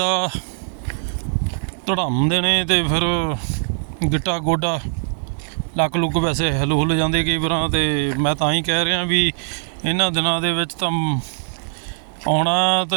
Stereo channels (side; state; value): left; silent; digital silence